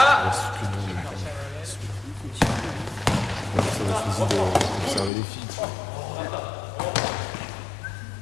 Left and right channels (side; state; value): right; drops out; at 5.1 s